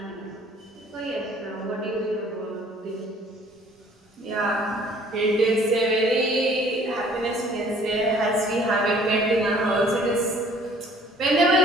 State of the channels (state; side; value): normal; both; correlation 0.55